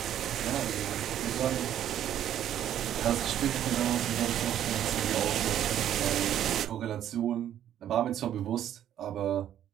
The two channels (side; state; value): left; quieter; 10.9 dB